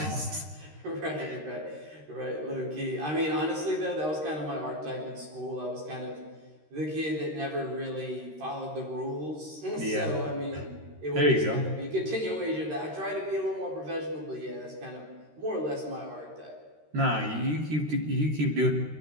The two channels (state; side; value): late; left; 13 ms